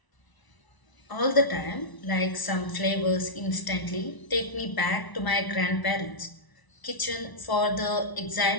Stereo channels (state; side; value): late; right; 1.0 ms